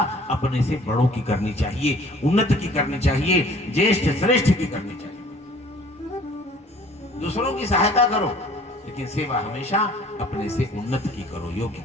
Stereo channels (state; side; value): normal; both; correlation 0.52